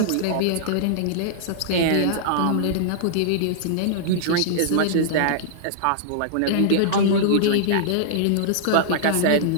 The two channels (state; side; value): different; both; correlation -0.02